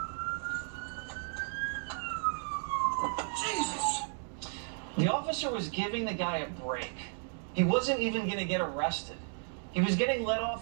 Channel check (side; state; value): left; silent; 55 dB below the other